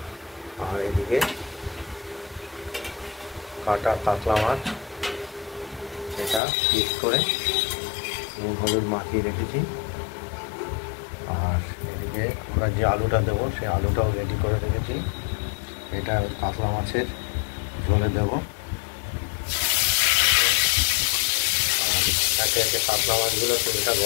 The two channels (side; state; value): right; drops out; at 6.4 s